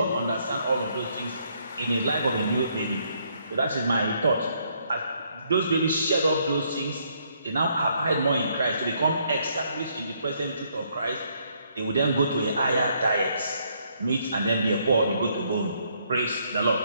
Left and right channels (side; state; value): both; inverted; correlation -0.71